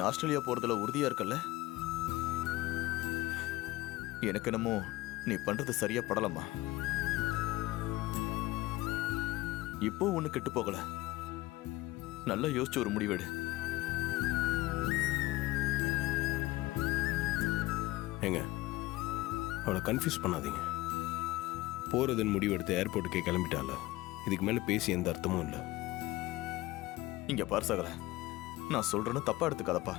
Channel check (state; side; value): quieter; right; 18.7 dB